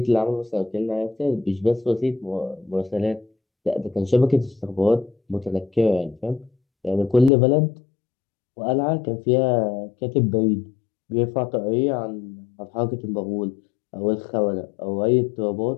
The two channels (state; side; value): drops out; right; at 7.3 s